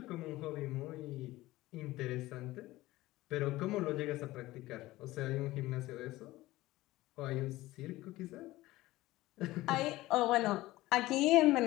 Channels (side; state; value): right; quieter; 17.7 dB